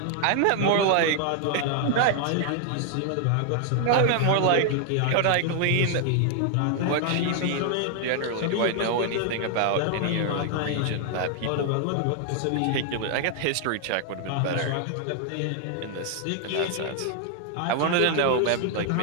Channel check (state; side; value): different; both; correlation 0.00